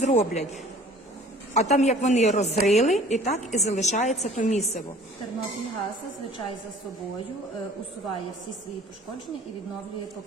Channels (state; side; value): normal; both; correlation 0.50